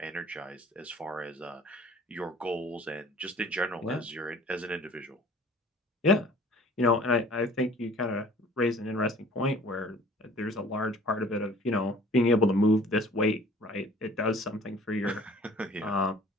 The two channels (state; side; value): normal; both; correlation 0.50